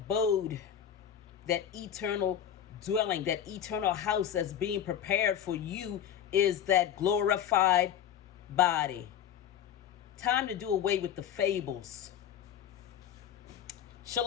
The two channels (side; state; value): right; quieter; 9.6 dB